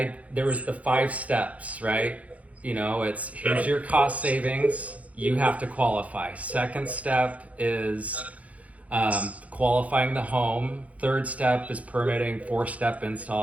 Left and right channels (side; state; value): left; late; 0.068 ms